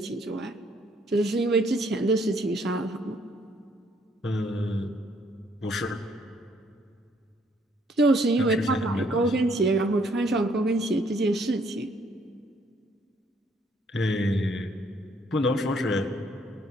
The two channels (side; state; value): both; normal; correlation 0.66